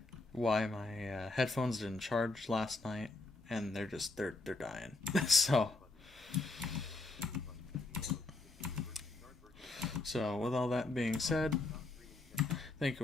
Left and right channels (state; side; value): quieter; right; 3.1 dB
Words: headphones didn't charge last night, and they're dying. So with all that being said, thank Thank